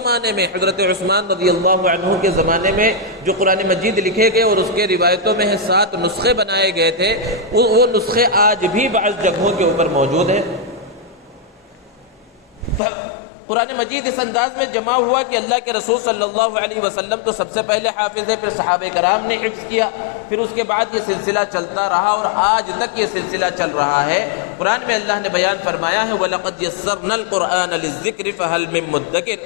میں حضرت عثمان رضی اللہ عنہ کے زمانے میں جو قرآن مجید لکھے گئے اور اس کے روایتوں میں 7 نسخے بنائے گئے تھے, وہ نسخے آج بھی بعض جگہوں کے اوپر موجود ہیں. قرآن مجید اس انداز میں جمع ہوا کہ اللہ کے رسول صلی اللہ علیہ وسلم تو سب سے پہلے حافظ ہے، پھر صحابہ کرام نے حفظ کیا، پھر اس کے بعد یہ سلسلہ چلتا رہا اور آج تک یہ سلسلہ چل رہا ہے۔ قرآن میں اللہ نے بیان فرمایا ہے وَلَقَدْ يَسَّرْنَا الْقُرْآنَ لِلذِّكْرِ فَهَلْ مِن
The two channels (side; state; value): right; drops out; at 12.8 s